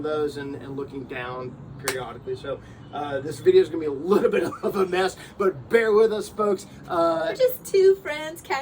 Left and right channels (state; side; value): identical; both; correlation 1.00